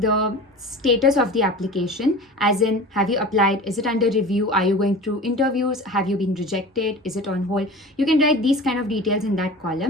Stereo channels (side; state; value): both; normal; correlation 0.36